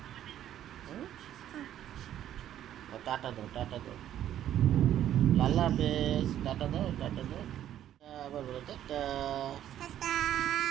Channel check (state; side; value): quieter; left; 11.4 dB